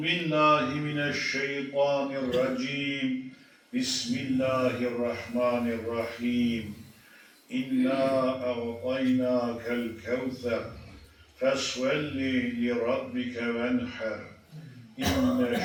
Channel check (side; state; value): both; identical; correlation 1.00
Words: billahi mineşşeytanirracim. Bismillahirrahmanirrahim. İnna a'taynakel kevser. Fesvelli li rabbike venher.